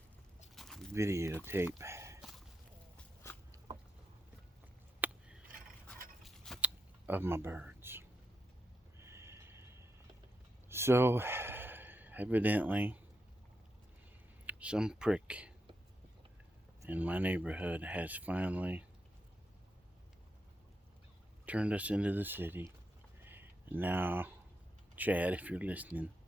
videotape of my birds. So, evidently, some prick in my neighborhood has finally turned us into the city. And now, Chad, if you're listening,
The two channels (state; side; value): normal; both; correlation 0.83